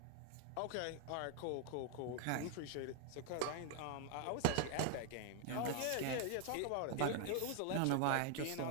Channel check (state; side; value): different; both; correlation 0.00